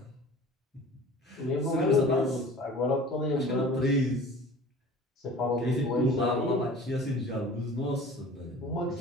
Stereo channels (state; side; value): normal; both; correlation 0.43